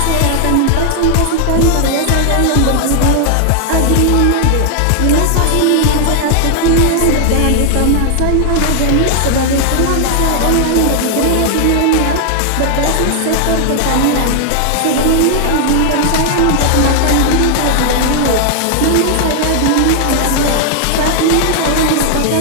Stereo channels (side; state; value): both; different; correlation 0.00